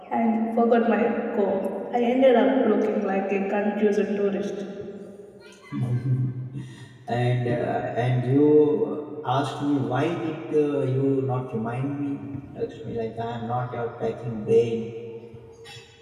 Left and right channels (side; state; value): both; identical; correlation 1.00